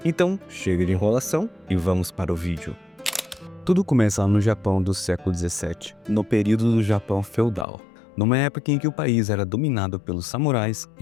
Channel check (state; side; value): drops out; right; at 7.7 s